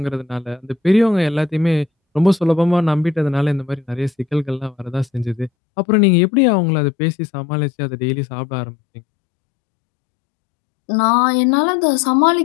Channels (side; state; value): right; drops out; at 5.5 s